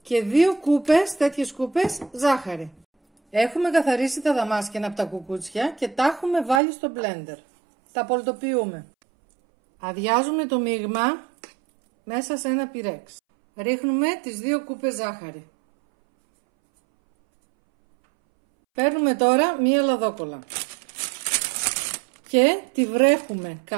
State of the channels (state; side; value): drops out; left; at 6.6 s